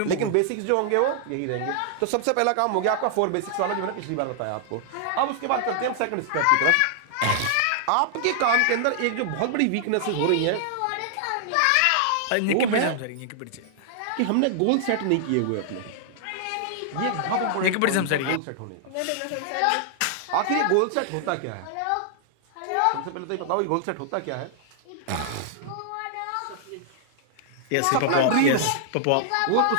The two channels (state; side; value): different; both; correlation -0.01